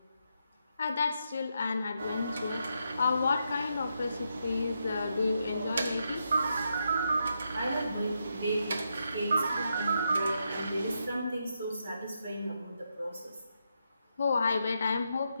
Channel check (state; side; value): inverted; both; correlation -0.82